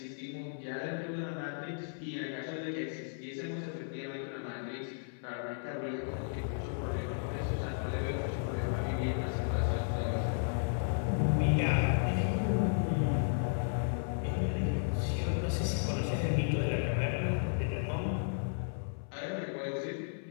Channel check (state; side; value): silent; right; 55 dB below the other